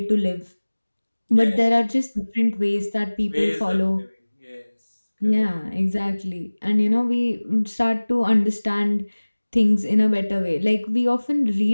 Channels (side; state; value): both; inverted; correlation -1.00